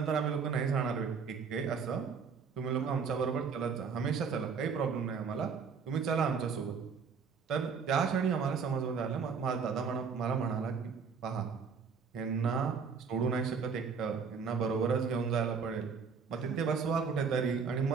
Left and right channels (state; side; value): quieter; left; 5.8 dB